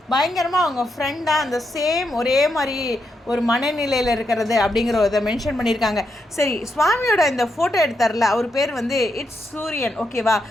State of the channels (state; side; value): normal; both; correlation 0.82